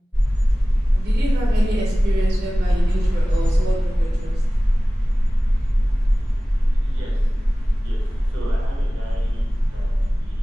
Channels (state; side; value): normal; both; correlation 0.97